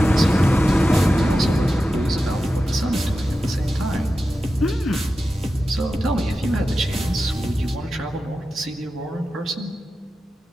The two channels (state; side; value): normal; both; correlation 0.92